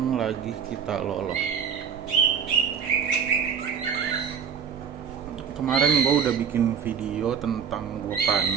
lagi kita loloh. Kemarin gue udah bikin video tentang gue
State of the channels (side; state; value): left; quieter; 7.4 dB